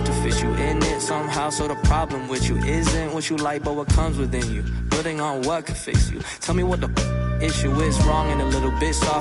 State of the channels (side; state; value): both; identical; correlation 1.00